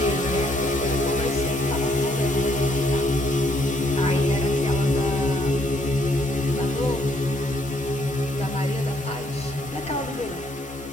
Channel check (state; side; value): normal; both; correlation 0.69